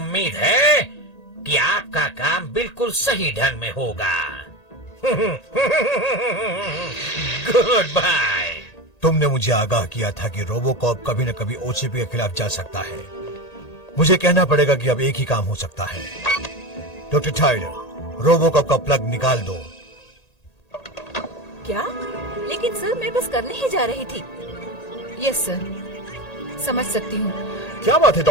है कि आपका काम बिल्कुल सही ढंग में होगा। Goodbye. तुमने मुझे आगाह किया था कि रोबोकॉप कभी न कभी ओसीपी के खिलाफ जा सकता है। मुझे कहना पड़ेगा कि अब एक ही काम हो सकता है। डॉक्टर टाइलर, रोबोकॉप का प्लग निकाल दो। क्या? लेकिन सर मैं बस करने ही जा रही थी। यस सर, समझ सकती हूँ। क्या बात है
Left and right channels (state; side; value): late; right; 1.8 ms